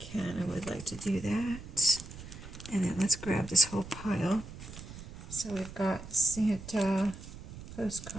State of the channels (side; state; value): right; noise; rumble, 13 dB below the sound